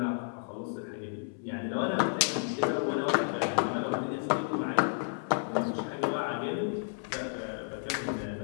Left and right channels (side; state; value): right; silent; 57 dB below the other